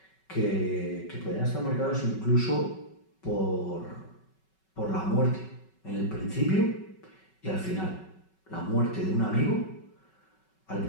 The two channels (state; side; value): late; right; 5.3 ms